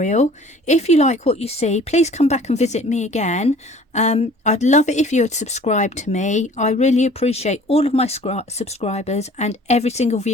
If you like what you see, please come back and visit me again. I'd love it if you would subscribe to me. I really appreciate all of my subscribers and every single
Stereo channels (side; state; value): both; normal; correlation 0.50